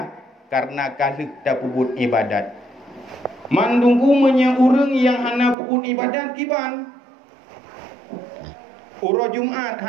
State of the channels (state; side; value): drops out; left; at 5.6 s